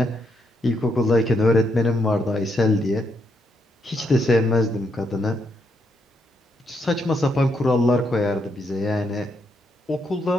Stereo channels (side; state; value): both; normal; correlation 0.77